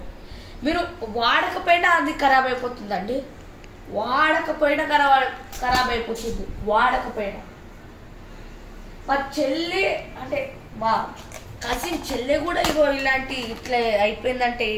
మీరు వాడకపోయినా అది ఖరాబ్ అయిపోతుందండి. వాడకపోయినా ఖరాబ్ అయిపోతుంది. వాడకపోయినా మా చెల్లి అంటే మా కజిన్ చెల్లె కూడా ఇగో ఇలాంటి ఇట్లా అయిపోయిందంటే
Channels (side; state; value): both; identical; correlation 1.00